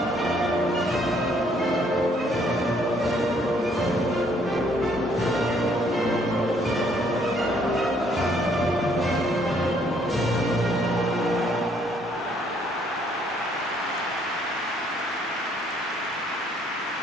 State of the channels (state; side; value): normal; both; correlation 0.66